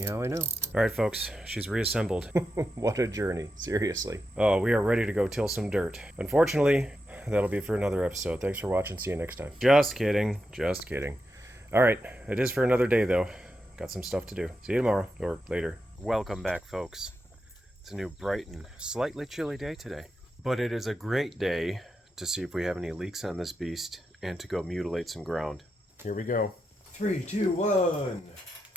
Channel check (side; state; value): both; normal; correlation 0.87